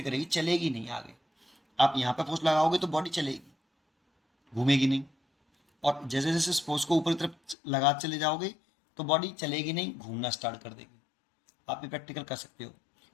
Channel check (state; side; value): drops out; right; at 7.6 s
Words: करेगी, चलेगी नहीं आगे। आप यहाँ पे फोर्स लगाओगे तो बॉडी चलेगी, घूमेगी नहीं। और जैसे जैसे इस फोर्स को ऊपरी तरफ लगा चले जाओगे तो बॉडी चलेगी नहीं, घूमना स्टार्ट कर देगी। आप भी प्रैक्टिकल कर सकते हो।